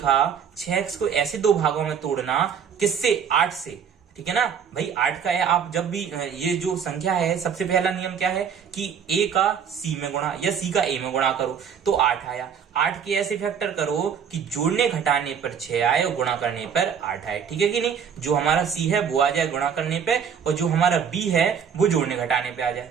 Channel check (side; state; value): left; quieter; 7.4 dB